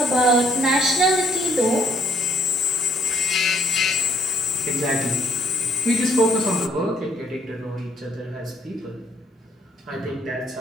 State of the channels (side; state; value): both; normal; correlation 0.67